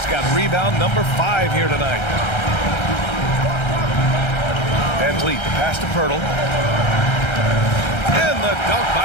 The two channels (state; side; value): late; right; 1.3 ms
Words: got rebound number 5 here tonight. VanVleet, the pass to Pirtle. And the dunk